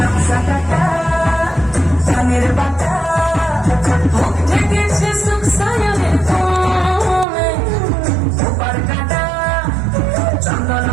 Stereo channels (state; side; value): drops out; left; at 7.2 s